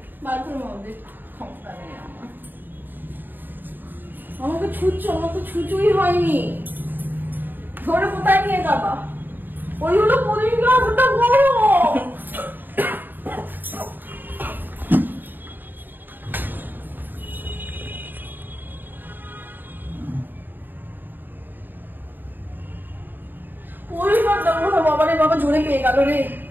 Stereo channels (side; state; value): left; late; 0.091 ms